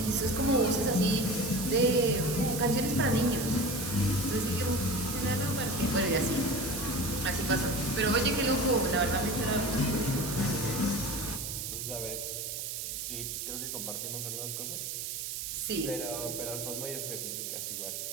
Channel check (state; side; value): noise; right; hiss, 5 dB below the sound